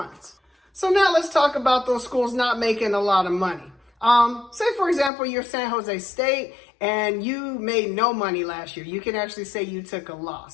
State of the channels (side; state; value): right; drops out; at 5.1 s